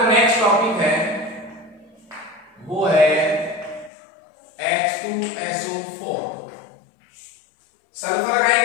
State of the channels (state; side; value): drops out; right; at 3.9 s